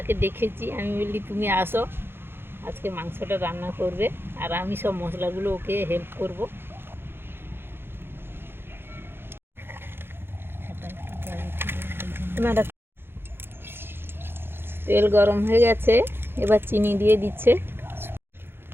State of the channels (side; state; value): left; late; 0.11 ms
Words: ডেকেছি, আমি বললি তুমি আসো, আজকে মাংসটা রান্না করবে, আর আমি সব মশলাগুলো ওকে হেল্প করব। তেল গরম হয়ে গেছে, এবার চিনি দিয়ে দিচ্ছে,